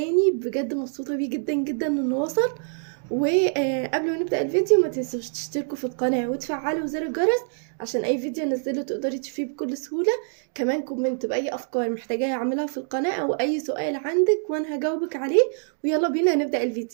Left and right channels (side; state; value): left; silent; digital silence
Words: بجد مبسوطه بيه جدا جدا انه وصل. وقبل ما نبدأ الفيديو ما تنسوش تشتركوا في القناة وتفعلوا زر الجرس عشان اي فيديو انزله تقدري تشوفيه بكل سهولة. كمان كومنت بأي افكار محتاجاها اعملها في القناة او اي سؤال عندك وانا هجاوبك عليه. ويلا بينا نبدأ